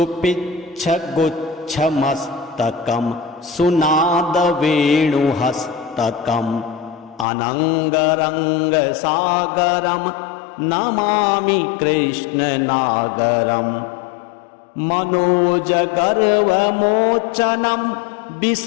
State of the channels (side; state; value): right; drops out; at 7.2 s